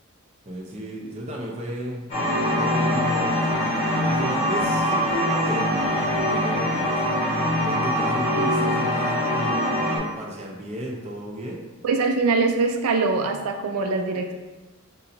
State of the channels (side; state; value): both; normal; correlation 0.16